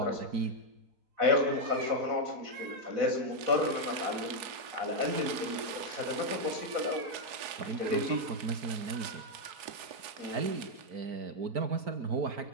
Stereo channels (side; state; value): left; late; 4.8 ms